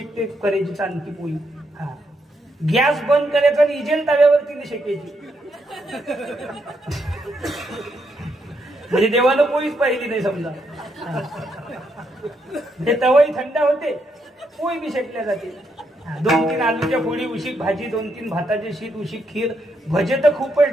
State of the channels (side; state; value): both; normal; correlation 0.78